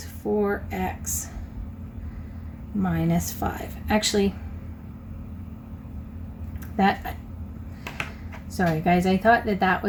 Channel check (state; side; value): identical; both; correlation 1.00